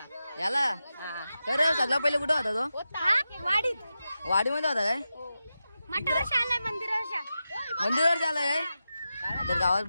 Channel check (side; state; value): both; inverted; correlation -0.91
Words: याला खरं सगळं पहिले कुठं होता तो? वाडीत. वाडीमध्ये होता काय? मंदिरावर आलाय. तर गावात